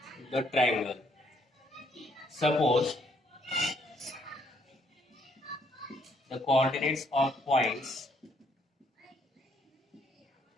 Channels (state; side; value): normal; both; correlation 0.69